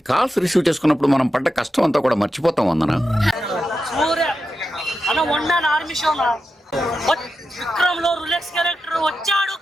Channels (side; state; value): both; normal; correlation 0.89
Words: కాల్స్ రిసీవ్ చేసుకున్నప్పుడు మనం పడ్డ కష్టం అంతా కూడా మర్చిపోతాం. వందన విక్రమ్ లో రులెక్స్ క్యారెక్టర్ వచ్చాడు,